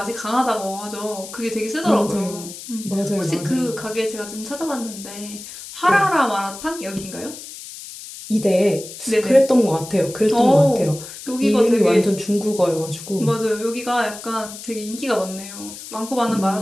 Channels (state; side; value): noise; left; hiss, 13 dB below the sound